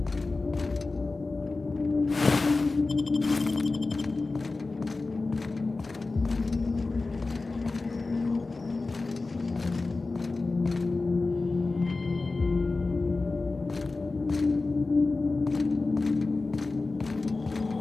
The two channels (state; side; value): quieter; right; 3.6 dB